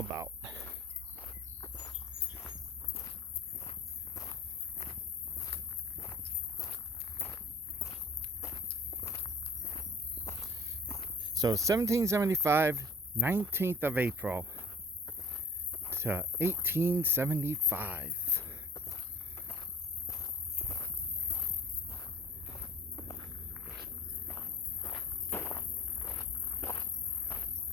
So 1775, 19th of April to 1875.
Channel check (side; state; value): both; normal; correlation 0.49